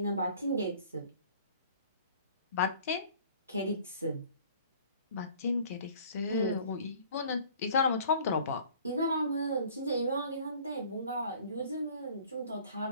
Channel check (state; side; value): inverted; both; correlation -0.51